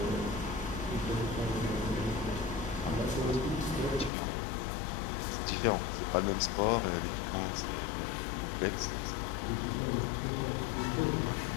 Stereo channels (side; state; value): right; drops out; at 4.1 s